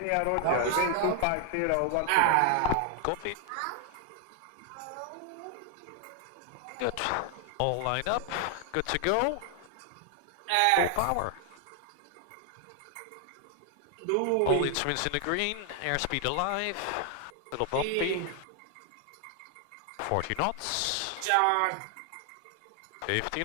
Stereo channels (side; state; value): both; different; correlation 0.00